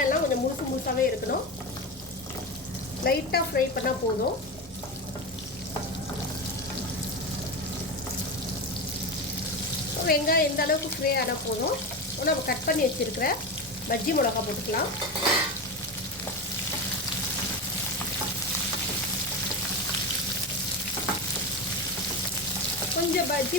கொஞ்சம் முழுசாகவே இருக்கணும். லைட்டாக ஃப்ரை பண்ணால் போதும். வெங்காயம் எந்த அளவுக்கு ஃப்ரை ஆனால் போதும். நம்ம கட் பண்ணி வச்சுருக்கிற பஜ்ஜி மிளகா போட்டுக்கலாம். கொஞ்சம் பஜ்ஜி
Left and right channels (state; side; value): normal; both; correlation 0.20